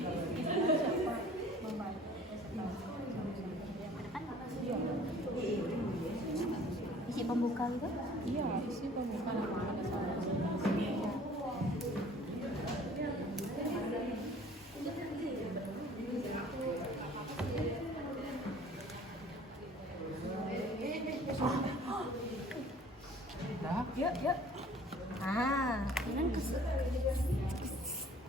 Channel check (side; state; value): both; normal; correlation 0.51